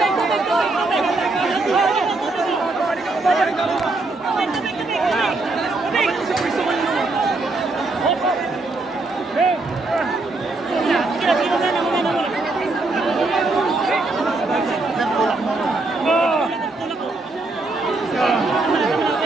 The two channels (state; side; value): quieter; left; 3.2 dB